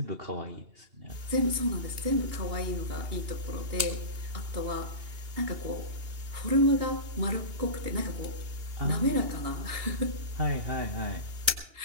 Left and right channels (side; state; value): left; late; 2.8 ms